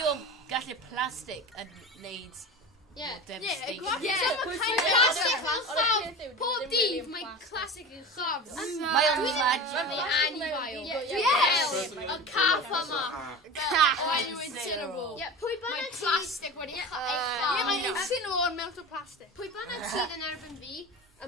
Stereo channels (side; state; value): both; normal; correlation 0.31